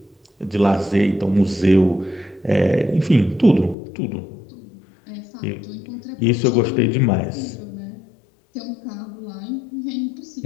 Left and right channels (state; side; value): drops out; right; at 3.8 s